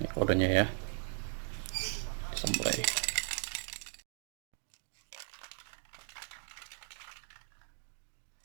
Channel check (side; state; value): left; silent; 53 dB below the other